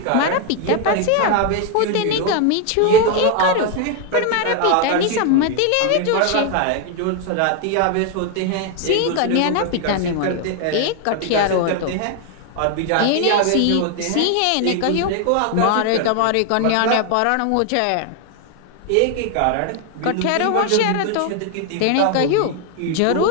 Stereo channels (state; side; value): different; both; correlation 0.00